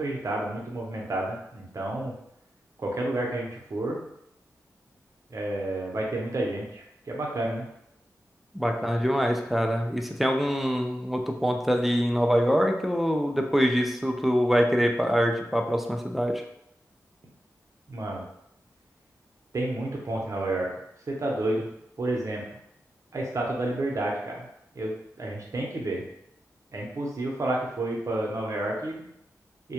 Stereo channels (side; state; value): both; normal; correlation 0.91